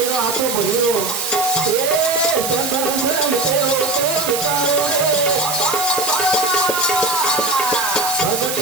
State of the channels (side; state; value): right; noise; hiss, 3 dB below the sound